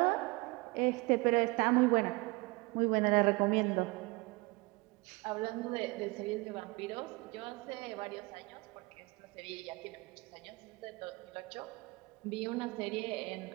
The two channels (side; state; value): left; quieter; 25.2 dB